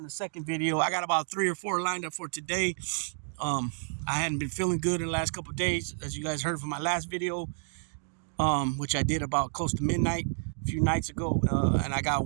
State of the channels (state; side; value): silent; left; digital silence